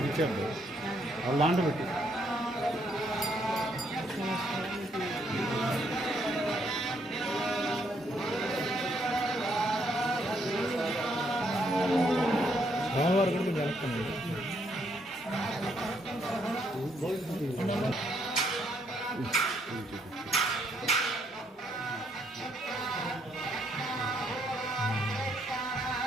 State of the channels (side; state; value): both; normal; correlation 0.72